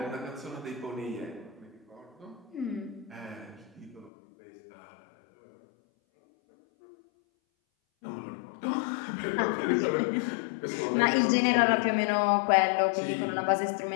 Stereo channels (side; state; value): right; drops out; at 4.1 s